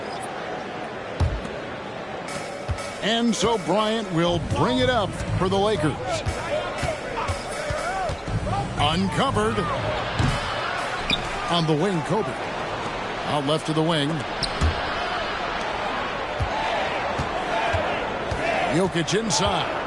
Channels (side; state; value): both; identical; correlation 1.00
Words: And so Bryant will bring it up for the Lakers. Uncovered. On the wing, Kobe. Out left to the wing. Jokic inside.